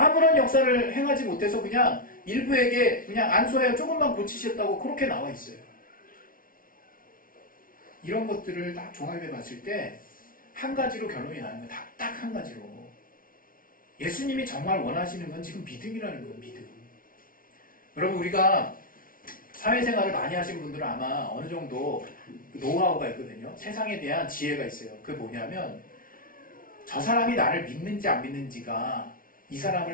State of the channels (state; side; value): late; right; 0.41 ms